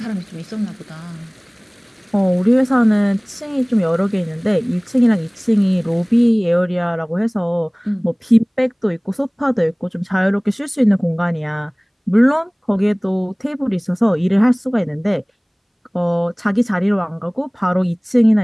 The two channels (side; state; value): both; identical; correlation 1.00